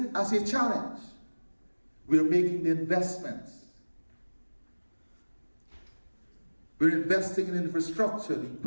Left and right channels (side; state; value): both; inverted; correlation -1.00